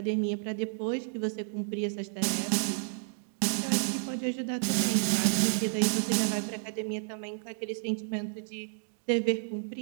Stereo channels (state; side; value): silent; left; digital silence